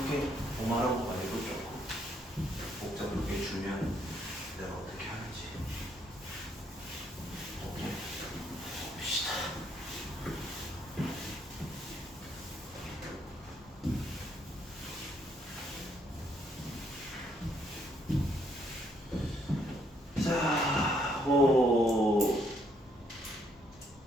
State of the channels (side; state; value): both; normal; correlation 0.70